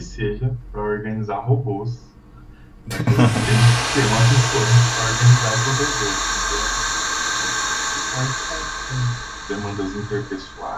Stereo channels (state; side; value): identical; both; correlation 1.00